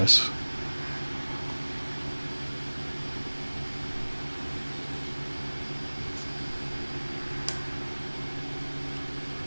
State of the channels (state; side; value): inverted; both; correlation -1.00